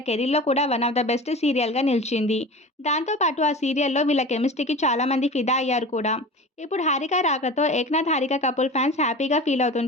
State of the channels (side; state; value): both; normal; correlation 0.34